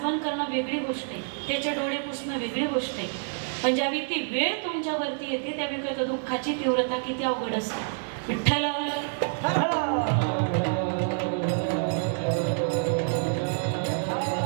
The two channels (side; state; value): left; silent; digital silence